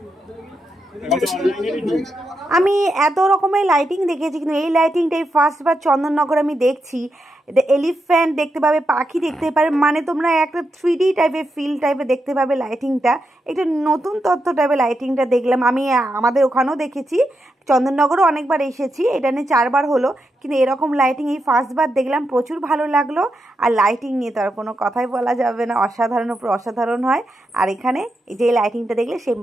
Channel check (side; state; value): both; normal; correlation 0.85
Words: আমি এত রকমের লাইটিং দেখেছি, কিন্তু এই লাইটিংটাই ফার্স্টবার চন্দননগর আমি দেখছি। এটা এলিফ্যান্ট দেখতে পাবে, পাখি দেখতে পাবে, মানে তোমরা একটা 3D টাইপের ফিল টাইপের দেখতে পাবে লাইটিংটা। একটা নতুন তথ্য টাইপের লাইটিংটা দেখলাম আমি। আমাদের ওখানেও দেখেছি, চন্দননগরও অনেকবার এসেছি, এটা নিয়ে 4 বার হলো, কিন্তু এরকম লাইটিং এই ফার্স্টবার দেখলাম, প্রচুর ভালো লাগলো। আর লাইটিং নিয়ে তো আর কোনো কথাই বলা যাবে না, অসাধারণ উপর অসাধারণ হয়। আর এখানে এই যে লাইটিংটা দেখলে সেই